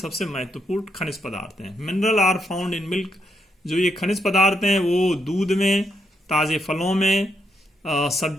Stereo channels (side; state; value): both; normal; correlation 0.78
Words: महत्वपूर्ण खनिज पदार्थ हैं। Mineral are found in milk. जो ये खनिज पदार्थ हैं वो दूध में, ताजे फलों में,